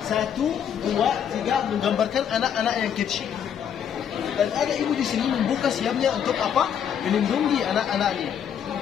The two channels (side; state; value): right; quieter; 8.6 dB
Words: 1, 2, 3 menggambarkan anak-anak yang kecil. Dan ada ibu di sini membuka siapnya untuk apa? Melindungi anak-anaknya.